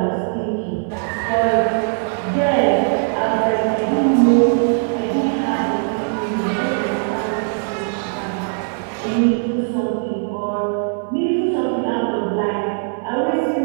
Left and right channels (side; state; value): left; silent; 57 dB below the other